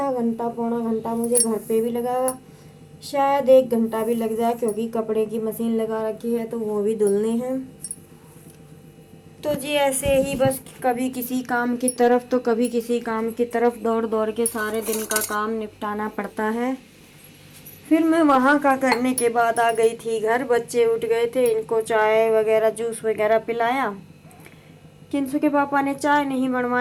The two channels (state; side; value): identical; both; correlation 1.00